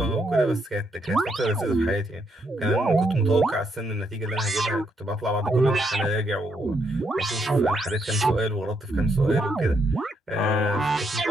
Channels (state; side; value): normal; both; correlation 0.76